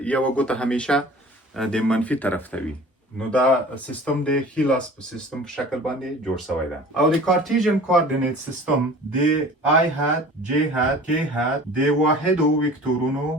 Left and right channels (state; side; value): normal; both; correlation 0.43